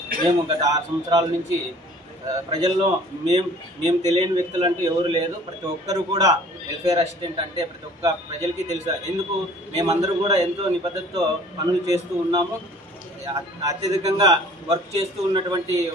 మేము గత 6 సంవత్సరాల నుంచి ప్రజల్లో మేము తెలియని వ్యక్తులు అంటూ ఎవరు లేదు. ప్రతి ఒక్కరు కూడా వెల్ఫేర్ అసిస్టెంట్ అంటే ప్రతి ఒక్క ప్రజలకి తెలుసు. ఎందుకు మేమందరూ కూడా ఎంతో నిబద్ధతతో పనులు చేస్తూ ఉన్నాము. అత్యధికంగా వర్క్ చేస్తూ ఉన్నటువంటి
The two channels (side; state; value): both; normal; correlation 0.51